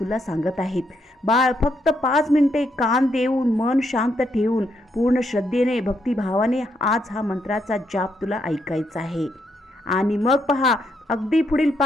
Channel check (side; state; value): both; normal; correlation 0.77